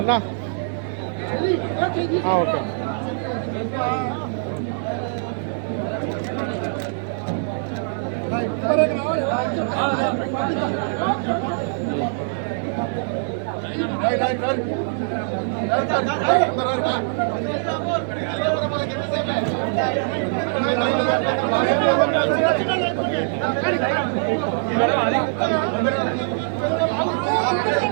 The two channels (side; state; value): left; silent; 64 dB below the other